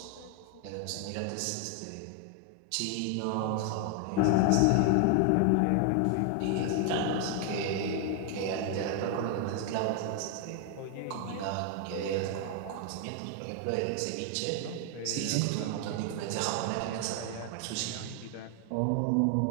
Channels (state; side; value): different; both; correlation 0.00